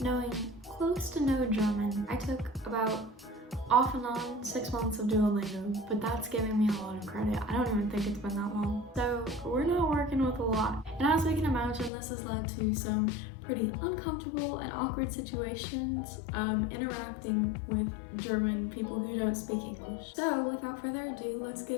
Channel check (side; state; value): right; drops out; at 11.9 s